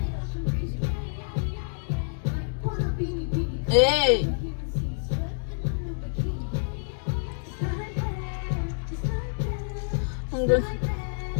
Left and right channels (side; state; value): right; silent; digital silence